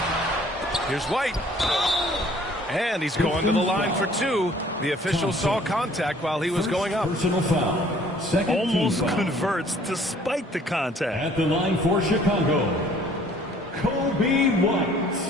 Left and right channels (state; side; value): normal; both; correlation 0.57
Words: Here's White. And he's going to the line for 2. The official saw contact while he was going up. Personal foul. Second almost foul. Converts despite the contact. At the line for Chicago, Kobe White.